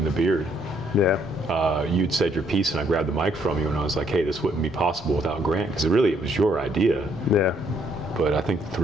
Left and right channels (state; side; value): normal; both; correlation 0.69